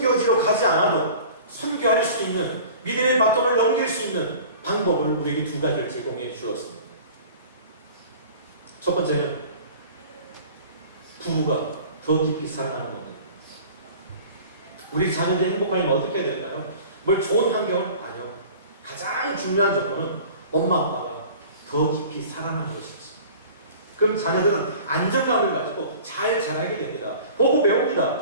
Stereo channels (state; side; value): inverted; both; correlation -0.43